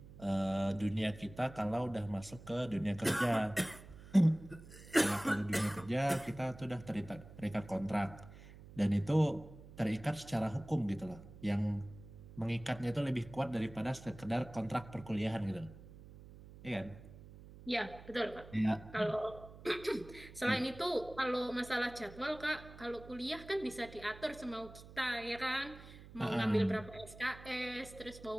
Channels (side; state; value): right; noise; hum, 17 dB below the sound